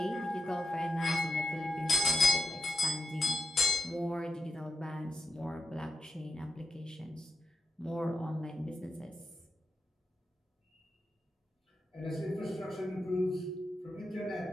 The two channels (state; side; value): normal; both; correlation 0.83